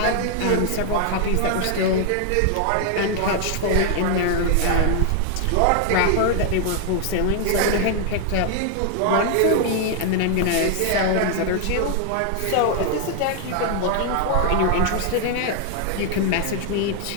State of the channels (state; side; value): different; both; correlation 0.00